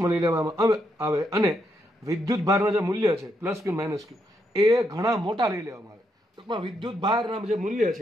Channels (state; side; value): normal; both; correlation 0.79